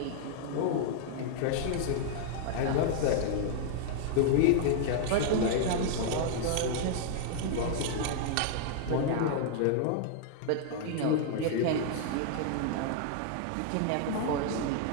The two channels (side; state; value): both; different; correlation -0.01